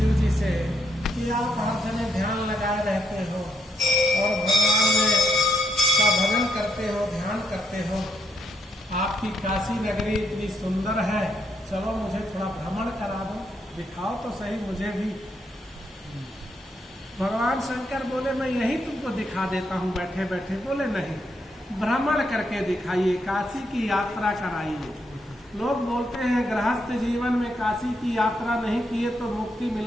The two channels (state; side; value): normal; both; correlation 0.77